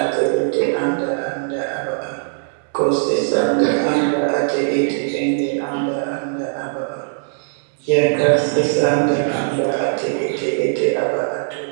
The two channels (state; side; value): silent; left; 63 dB below the other